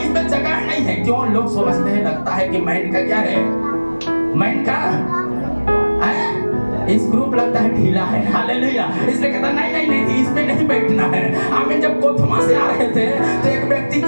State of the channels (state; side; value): inverted; both; correlation -1.00